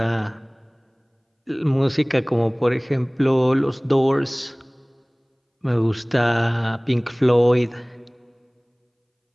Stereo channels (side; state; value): both; identical; correlation 1.00